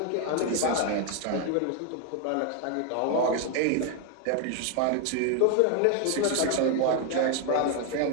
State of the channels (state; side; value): different; both; correlation 0.01